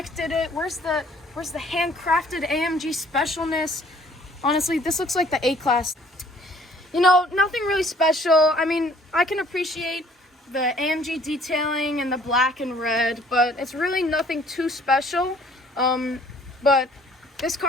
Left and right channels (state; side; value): normal; both; correlation 0.58